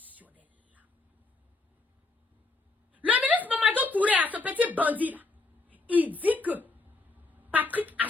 Le ministre Mamadou Touré, ce petit bandit là, il dit que Patrick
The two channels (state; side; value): quieter; right; 3.4 dB